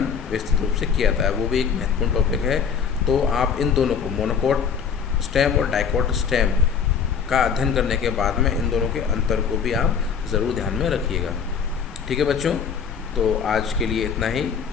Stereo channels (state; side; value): quieter; right; 6.7 dB